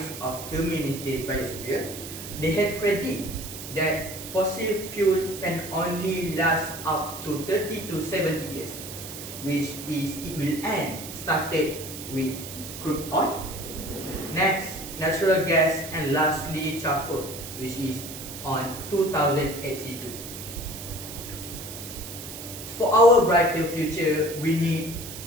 of Humanity Biosphere, they had predicted that fossil fuel can only last up to 30 to 70 years, which is it will end started with crude oil, next natural gas, and lastly charcoal, which is on 2082. For our brighter future, we need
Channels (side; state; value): right; noise; hiss, 10 dB below the sound